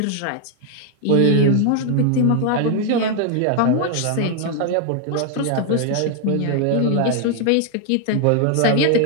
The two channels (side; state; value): both; different; correlation 0.00